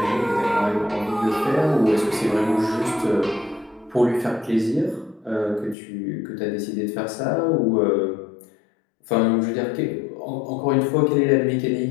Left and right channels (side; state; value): right; drops out; at 5.8 s